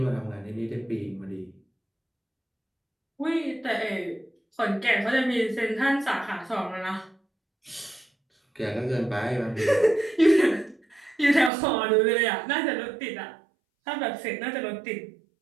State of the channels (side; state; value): left; drops out; at 11.5 s